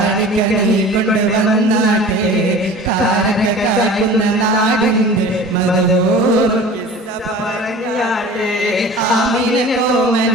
നീ കൊണ്ടുവന്നാട്ടെ കാരക്ക കാക്കുന്ന നാടിന്റെ മധുർ ആമിന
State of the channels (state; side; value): normal; both; correlation 0.41